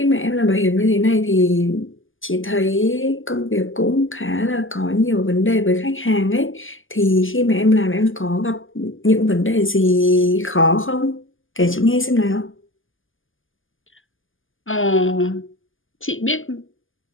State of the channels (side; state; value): right; late; 0.58 ms